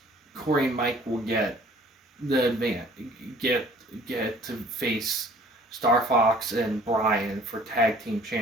Corey and Mike will get the get to face Star Fox and Brian for tag team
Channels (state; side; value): normal; both; correlation 0.53